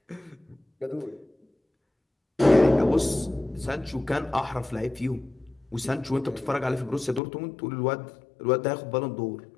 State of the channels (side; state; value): right; drops out; at 7.2 s